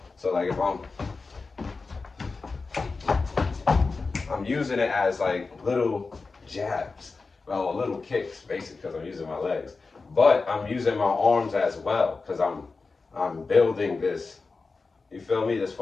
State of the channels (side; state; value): right; quieter; 4.1 dB